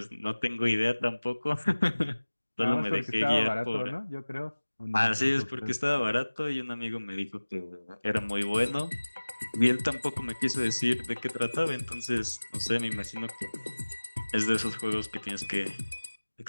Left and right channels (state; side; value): inverted; both; correlation -1.00